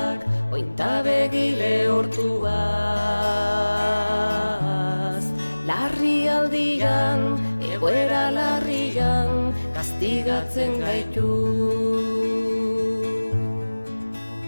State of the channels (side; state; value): both; inverted; correlation -1.00